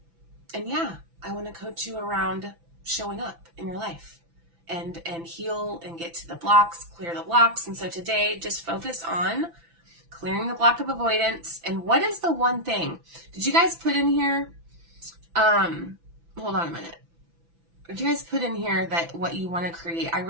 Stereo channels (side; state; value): left; late; 6.0 ms